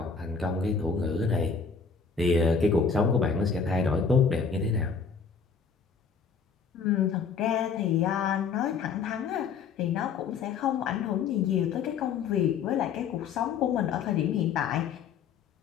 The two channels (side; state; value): right; quieter; 5.9 dB